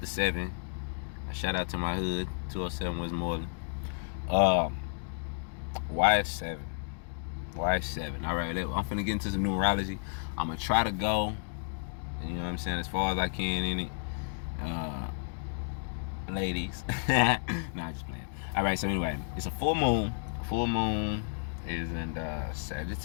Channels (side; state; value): right; silent; digital silence